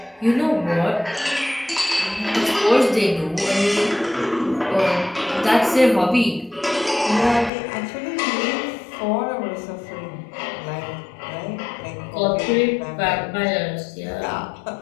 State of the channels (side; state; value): right; drops out; at 7.5 s